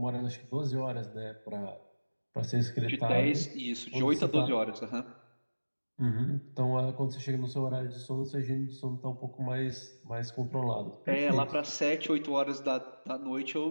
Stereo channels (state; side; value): inverted; both; correlation -1.00